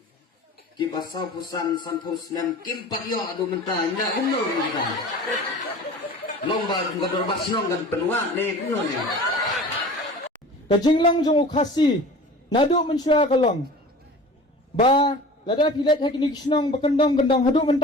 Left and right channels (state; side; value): normal; both; correlation 0.40